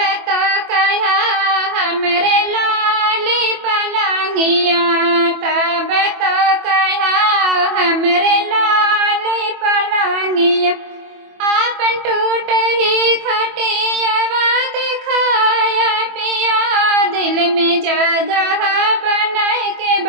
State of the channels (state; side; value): late; left; 24 ms